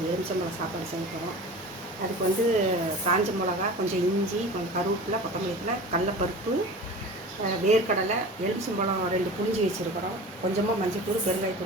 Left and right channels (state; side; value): normal; both; correlation 0.36